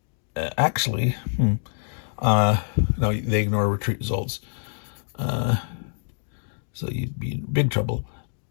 actually, no, they ignore retreat results. So you'd be in big trouble.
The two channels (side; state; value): right; silent; digital silence